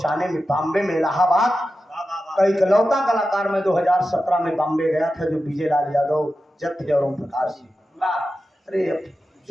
में बॉम्बे में इलाहाबाद का इकलौता कलाकार में 2017 में बॉम्बे गया था जो विजय लाल यादव जब थे और ओम प्रकाश जी अरे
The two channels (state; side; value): normal; both; correlation 0.92